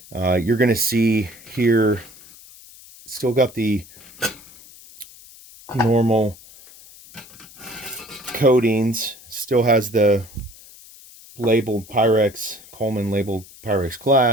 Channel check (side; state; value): left; noise; hiss, 21 dB below the sound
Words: You're going to see here, still got the normal coatings, still has the labeled Pyrex, Coleman labeled Pyrex